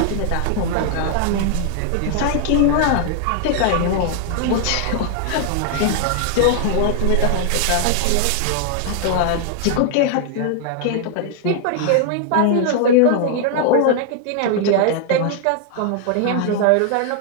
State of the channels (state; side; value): different; both; correlation 0.00